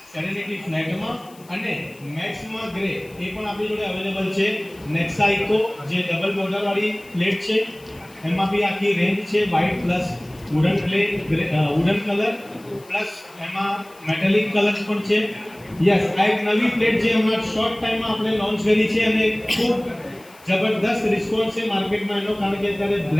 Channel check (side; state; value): left; noise; hiss, 25 dB below the sound